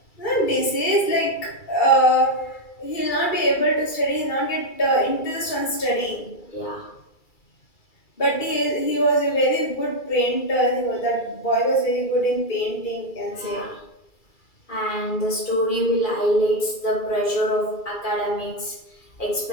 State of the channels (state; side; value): late; right; 2.3 ms